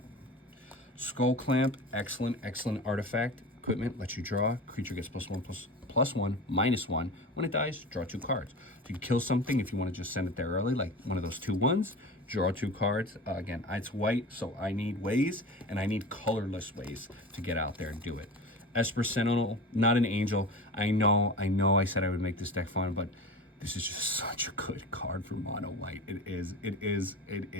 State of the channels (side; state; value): both; normal; correlation 0.32